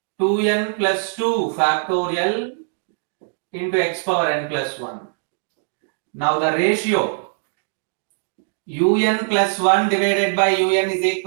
2n plus 2 factorial into x power n plus 1. Now the ratio un plus 1 divided by un is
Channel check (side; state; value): left; silent; digital silence